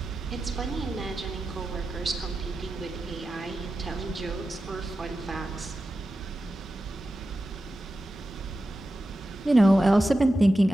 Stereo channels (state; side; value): normal; both; correlation 0.92